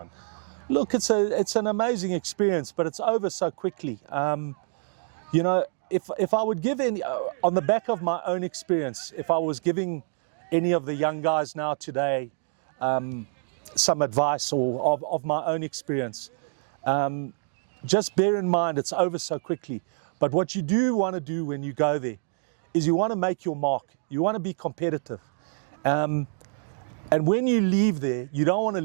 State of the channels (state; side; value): silent; left; 60 dB below the other